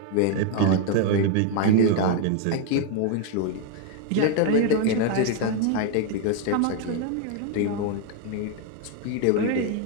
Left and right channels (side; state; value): both; different; correlation 0.01